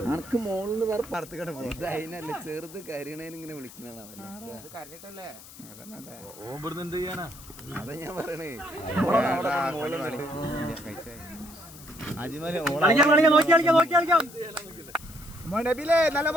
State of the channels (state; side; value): noise; left; hiss, 18 dB below the sound